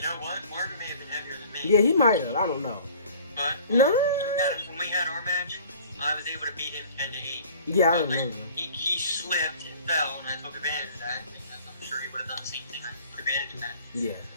know what? Marvin may have been heavier than me. Yeah, he might have. I don't know. But no. When we had our match, I was able to beat him 10-8. Yeah, I remember. He slipped and fell, and I took advantage of that. Because I'm sure he would have done the same thing. I took advantage of that. Yeah.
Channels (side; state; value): both; inverted; correlation -0.49